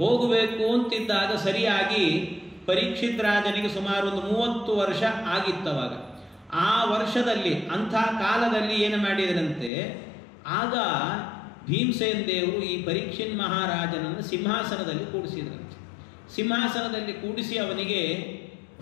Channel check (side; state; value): right; drops out; at 9.7 s